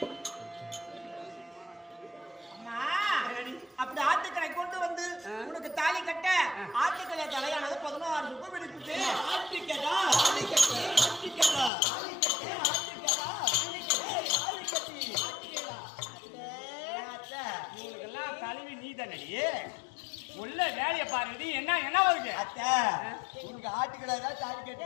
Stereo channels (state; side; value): drops out; right; at 11.7 s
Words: அப்படி ஆட்டுக்கடை கொண்டு வந்து உனக்கு தாலி கட்ட ஆட்டுக்கடை தலையானது 16 ரூபாய் எடுத்துட்டு ஆட்டுக்கடா இவங்களுக்கெல்லாம் தலைவி நீ தானடி உள்ள வேலையை பாருங்க. என்ன வருது அத்தை? உனக்கு ஆட்டுக்கடை தான் தாலி